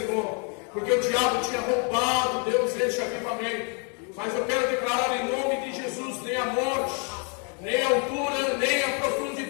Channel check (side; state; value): right; quieter; 38.0 dB